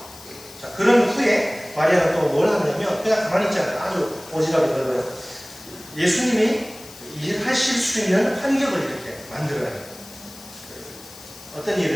자, 그런 후에 마리아는 또 뭘 하냐면 그냥 가만히 있지 않아요. 아주 오지랖이 넓어요. 예수님이 일하실 수 있는 환경을 이렇게 만들어요. 어떤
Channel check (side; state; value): left; noise; hiss, 18 dB below the sound